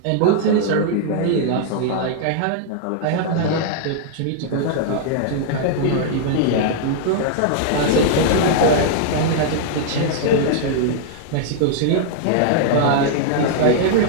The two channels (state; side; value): different; both; correlation -0.01